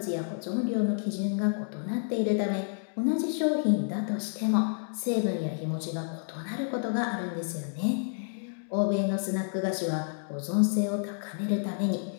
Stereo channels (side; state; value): right; silent; digital silence